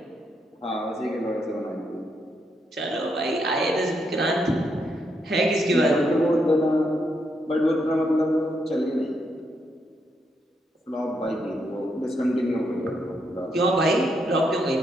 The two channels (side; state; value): both; normal; correlation 0.79